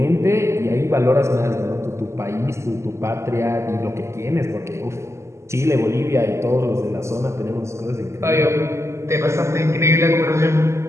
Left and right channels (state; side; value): late; left; 0.13 ms